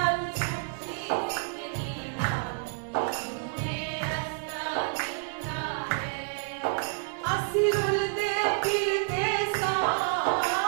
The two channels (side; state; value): left; silent; 58 dB below the other